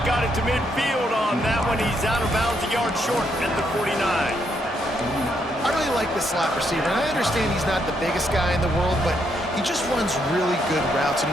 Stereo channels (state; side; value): normal; both; correlation 0.76